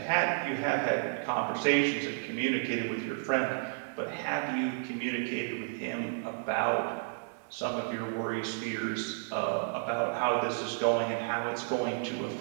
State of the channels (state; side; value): silent; left; digital silence